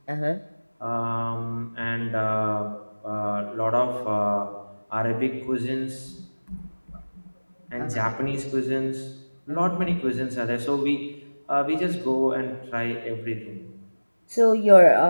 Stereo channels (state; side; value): inverted; both; correlation -1.00